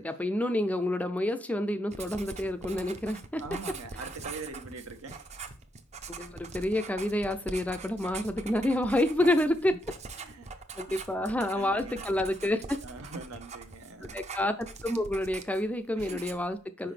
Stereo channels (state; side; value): normal; both; correlation 0.79